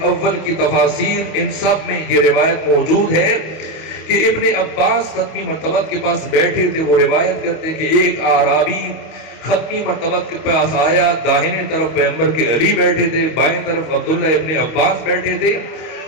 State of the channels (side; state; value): right; late; 25 ms